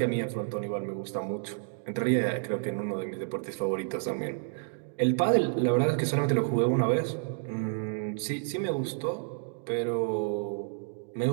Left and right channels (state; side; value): silent; left; digital silence